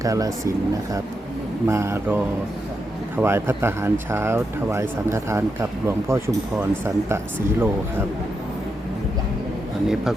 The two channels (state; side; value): normal; both; correlation 0.84